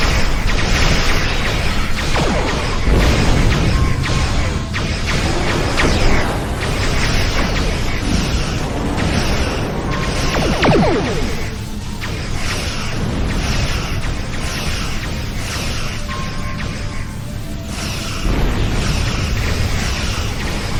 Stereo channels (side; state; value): both; identical; correlation 1.00